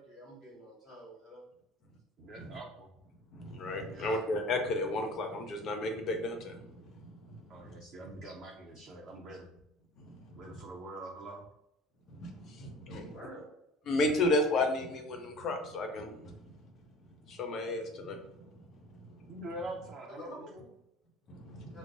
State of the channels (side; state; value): both; normal; correlation 0.43